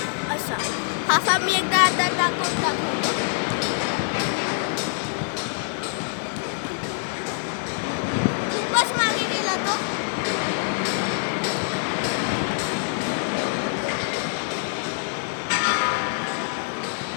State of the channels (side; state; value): right; silent; digital silence